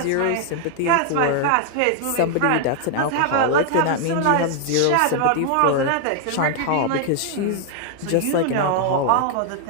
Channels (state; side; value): different; both; correlation 0.00